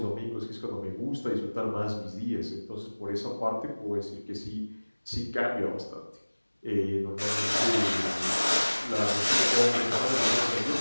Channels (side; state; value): both; inverted; correlation -1.00